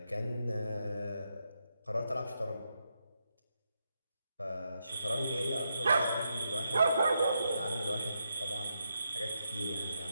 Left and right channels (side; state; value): both; inverted; correlation -0.83